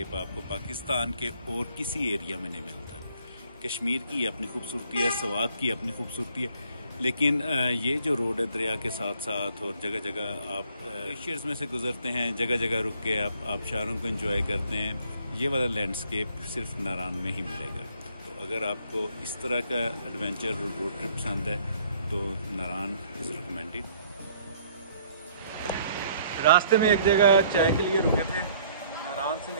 आपको पाकिस्तान के और किसी एरिया में नहीं मिलता। कश्मीर की अपनी खूबसूरती है, सवात की अपनी खूबसूरती है, लेकिन ये जो रोड है दरिया के साथ साथ और जगह जगह आप ग्लेशियर्स में से गुजरते हैं, जगह जगह रुक के आप आबशारों को एंजॉय करते हैं। ये वाला लैंडस्केप सिर्फ नारान में ही मिलेगा। तो अगर आपको इस तरह का एडवेंचर रोड ट्रिप पसंद है तो नारान इज़ रिकमेंडेड। रास्ते में एक जगह चाय के लिए रुके थे। नारान से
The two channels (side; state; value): both; inverted; correlation -0.61